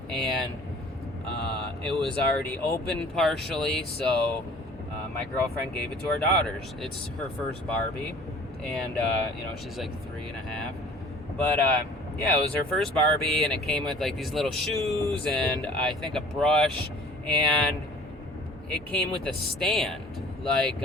and it was already open partially, so my girlfriend gave it to our daughters. It's her first Barbie, and she's like 3.5, but it was her first Barbie, and it came with like these little shoes and I think a brush, and it came with a stand, like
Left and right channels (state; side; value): normal; both; correlation 0.49